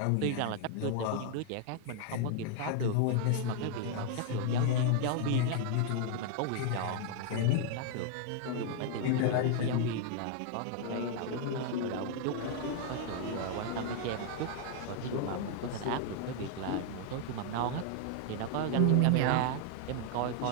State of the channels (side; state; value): both; different; correlation 0.00